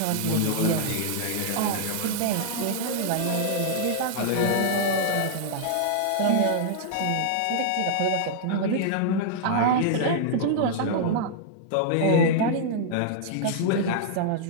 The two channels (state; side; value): different; both; correlation -0.01